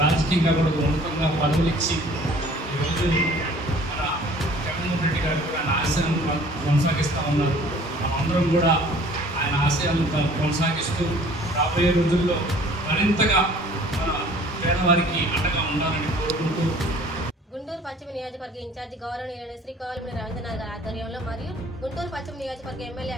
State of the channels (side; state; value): both; normal; correlation 0.52